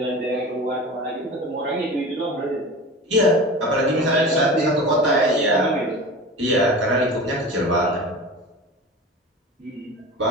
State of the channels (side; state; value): both; normal; correlation 0.33